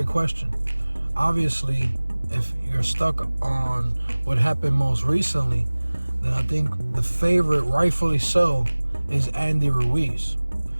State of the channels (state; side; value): inverted; both; correlation -1.00